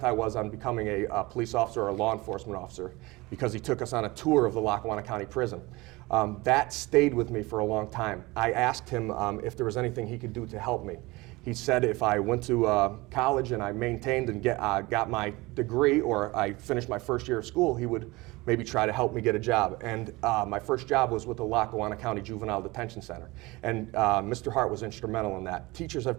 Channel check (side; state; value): left; quieter; 22.2 dB